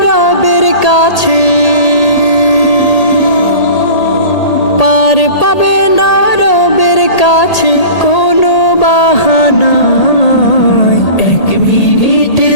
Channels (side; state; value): right; late; 1.8 ms